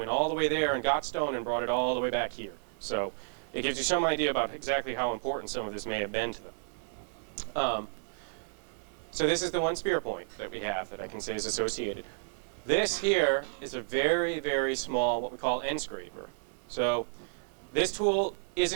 all the way there and got stone and brought it all the way back here. So it gives you some idea about exactly how important some of this may have been to them. So this is the one spear point that we have that I can say is associated. This here is a very, very small, what we call end scraper. So this tool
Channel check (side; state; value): left; silent; 57 dB below the other